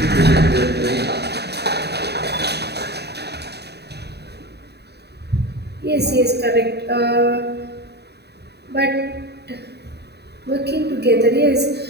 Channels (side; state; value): left; late; 0.48 ms